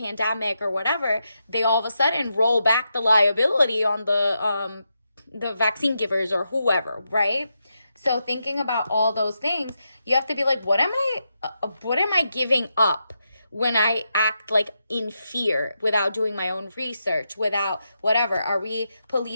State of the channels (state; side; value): inverted; both; correlation -0.85